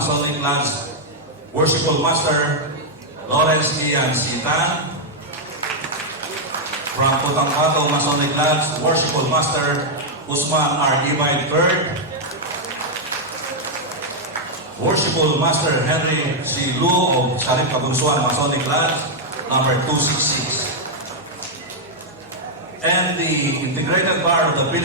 Lodge, Worshipful Master Lawrence Ian Sitan, from Putangkato Masonic Lodge, Worshipful Master Usman R. Ibay III, Worshipful Master Henry C. Lu of Sharif Kabunsuan Masonic Lodge, number 266. And the Integrated Bar of the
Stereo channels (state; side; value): normal; both; correlation -0.02